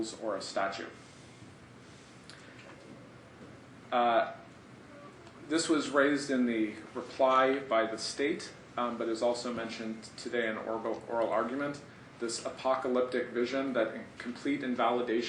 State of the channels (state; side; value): identical; both; correlation 1.00